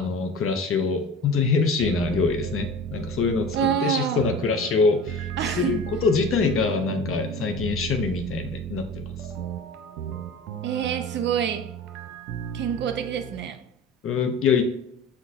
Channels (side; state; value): both; normal; correlation 0.36